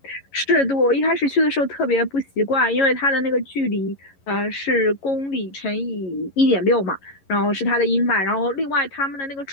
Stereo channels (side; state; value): right; late; 11 ms